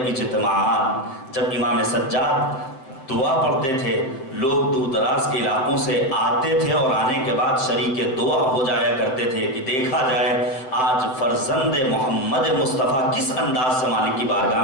اجتماعات جب امام سجاد دعا پڑھتے تھے، لوگ دور دراز کے علاقوں سے آتے تھے اور آنے کے بعد شریک دعا ہو جایا کرتے تھے کہ دیکھا جائے آج فرزند محمد مصطفیٰ کس انداز سے مالک کی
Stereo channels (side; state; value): right; late; 7.7 ms